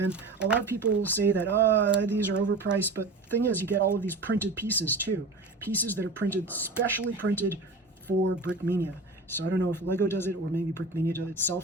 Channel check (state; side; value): quieter; left; 3.4 dB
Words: a lot of people say that, these are overpriced, but the thing is, you get all of these printed pieces too. Pieces that are printed, specially printed for Brickmania. So I don't know if Lego does it, or maybe Brickmania